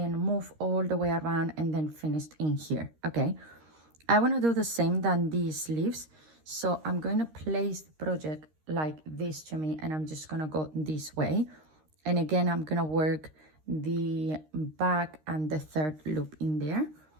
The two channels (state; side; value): late; left; 13 ms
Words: move all the way around and then finish in here, okay? I want to do the same than these sleeves. So I'm going to place the project like this to me, and I'm just going to go this way. And again, I'm going to work the back and the third loop in there.